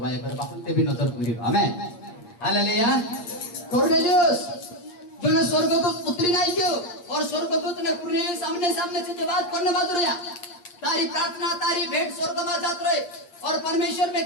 कर बापन ते भी नजर पूरी। आमीन, हालेलुया। कुरनेलियस जो ने स्वर्गदूत उतरी नहीं क्यों और स्वर्गदूत ने कुरनेलियस सामने सामने से जवाब करने बात रहा, तारी प्रार्थना तारी भेंट स्वर्ग में जात रहे और परमेश्वर में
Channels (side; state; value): right; late; 8.5 ms